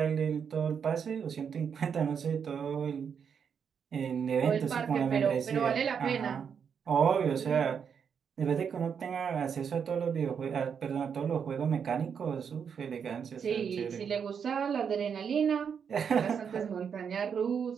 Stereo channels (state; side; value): quieter; left; 7.0 dB